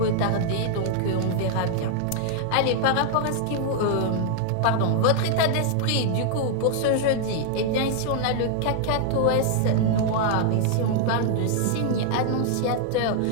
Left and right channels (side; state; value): both; different; correlation -0.01